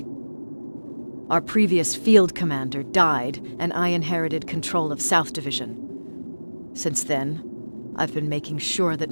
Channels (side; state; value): both; inverted; correlation -1.00